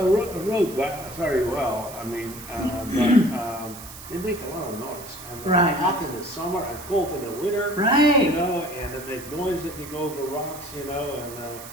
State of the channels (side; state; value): right; noise; hiss, 14 dB below the sound